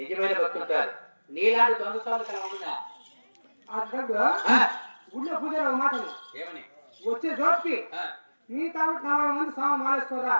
భక్తుడు కాదు, నీలాంటి దొంగ స్వామి కల ఉందా? గుళ్ళో పూజారి ఒక మాట ఏమని వచ్చే జోటికి నీ కాబట్టి 40 మంది స్వామి మాలేసుకోరా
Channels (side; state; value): both; inverted; correlation -1.00